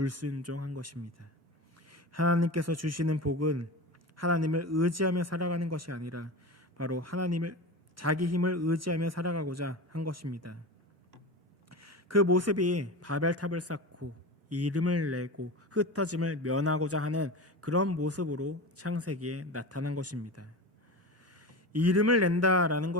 것입니다. 하나님께서 주시는 복은 하나님을 의지하며 살아가는 것이 아니라 바로 자기 힘을 의지하며 살아가고자 한 것입니다. 그 모습이 바벨탑을 쌓고 이름을 내고 흩어짐을 면하고자 하는 그런 모습으로 창세기에 나타난 것입니다. 이름을 낸다라는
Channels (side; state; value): both; normal; correlation 0.27